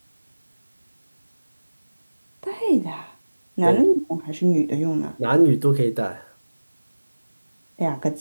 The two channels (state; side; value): inverted; both; correlation -1.00